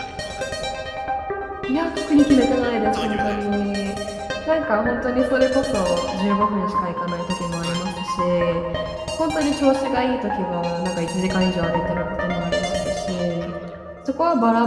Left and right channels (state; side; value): identical; both; correlation 1.00